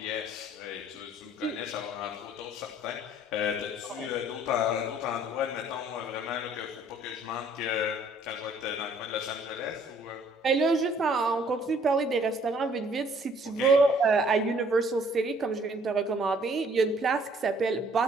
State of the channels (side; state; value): both; normal; correlation 0.59